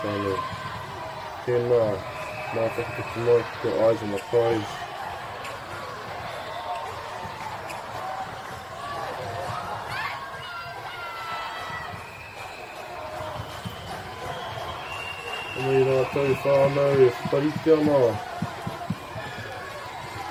whānau. Tēnā, mā whakatiki tonight, got eyes on the prize. Anei rātou whānau, whariti ana.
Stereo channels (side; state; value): both; identical; correlation 1.00